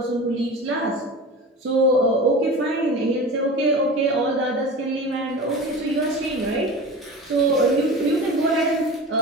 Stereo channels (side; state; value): both; normal; correlation 0.33